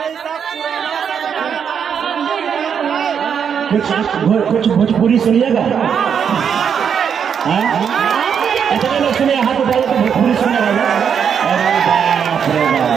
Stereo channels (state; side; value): quieter; left; 7.5 dB